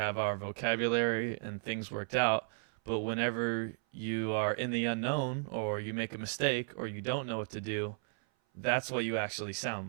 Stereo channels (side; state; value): left; silent; 55 dB below the other